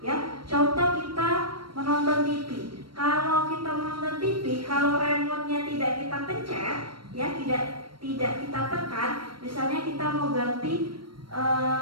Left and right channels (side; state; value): left; late; 0.73 ms